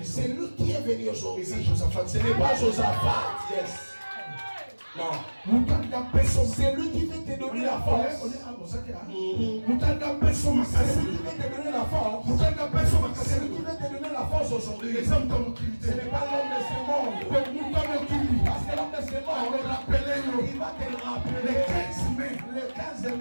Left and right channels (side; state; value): both; inverted; correlation -1.00